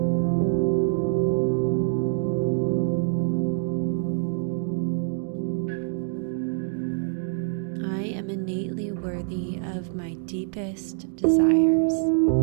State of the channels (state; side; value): silent; left; digital silence